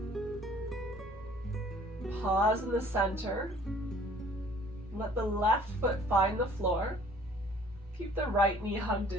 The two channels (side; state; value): both; normal; correlation 0.54